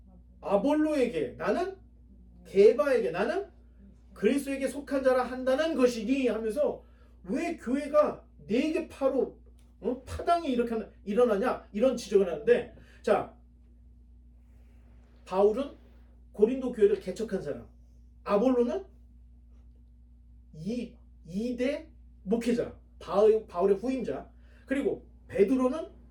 아볼로에게, 나는 게바에게, 나는 그리스도에게 속한 자라 한다는 것이니 하면서, 왜 교회가 네게 파당이 이렇게 일어나냐, 이런 지적을 하는데, 자, 바울은 고린도 교회를 개척한 사람, 아볼로는 2대 목회자, 바울의 후임자, 그리고 베드로는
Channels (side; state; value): both; identical; correlation 1.00